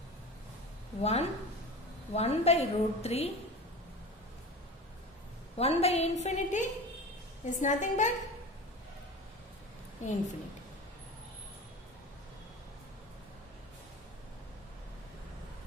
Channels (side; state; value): both; normal; correlation 0.32